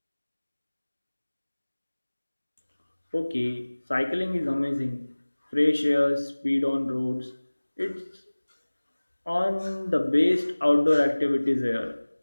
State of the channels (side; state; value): both; inverted; correlation -1.00